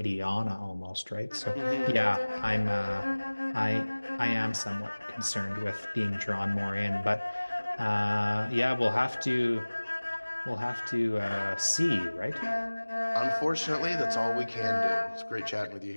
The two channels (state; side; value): inverted; both; correlation -1.00